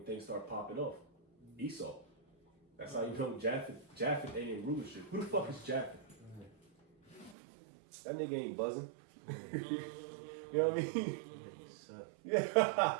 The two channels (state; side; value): drops out; left; at 7.4 s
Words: things start popping off? Esau. That's how you know Japheth ain't in rulership. Who the fuck is Japheth? That nigga ain't buzzing. You know what I mean?